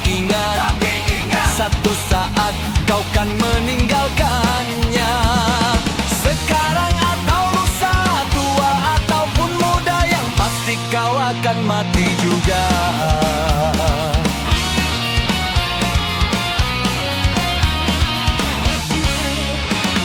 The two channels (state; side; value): identical; both; correlation 1.00